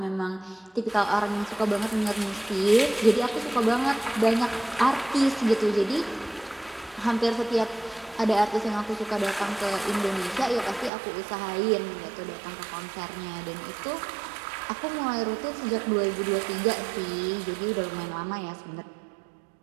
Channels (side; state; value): left; drops out; at 10.9 s